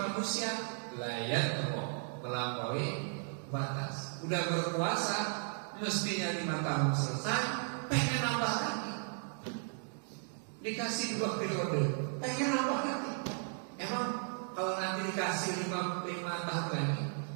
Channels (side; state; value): left; silent; 54 dB below the other